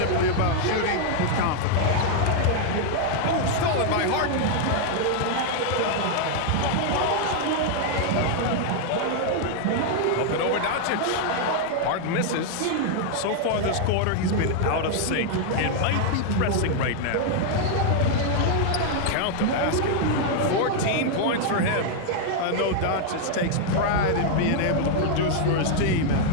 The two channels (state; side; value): different; both; correlation 0.00